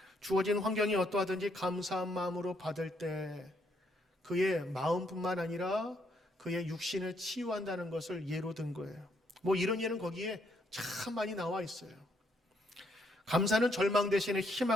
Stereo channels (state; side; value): normal; both; correlation 0.73